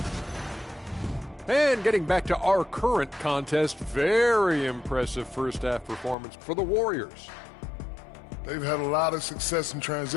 And getting back to our current contest, very impressive first half performance for the Warriors. They've had a lot of success in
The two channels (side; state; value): right; drops out; at 6.2 s